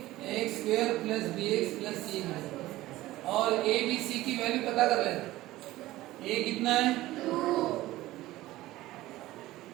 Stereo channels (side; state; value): left; quieter; 16.8 dB